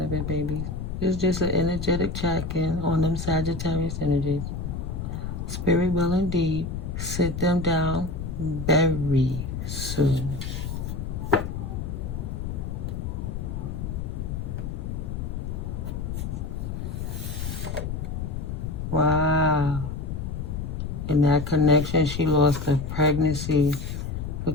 of it, babies. It's just an energetic check-in on them Sagittarius energies. Spirit will indeed sit them down very soon. Wow. In that connection, she lost her pregnancy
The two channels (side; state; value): left; noise; rumble, 4 dB below the sound